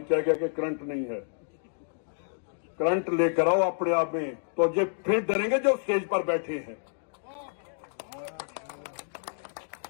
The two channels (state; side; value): silent; right; digital silence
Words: कहेगा कि करंट नहीं है। करंट लेकर आओ अपने आप में, तो ये फिर डरेंगे जो स्टेज पर बैठे हैं।